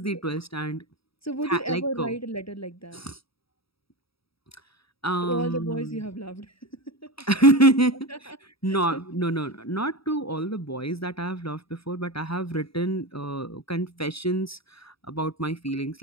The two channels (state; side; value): late; right; 0.76 ms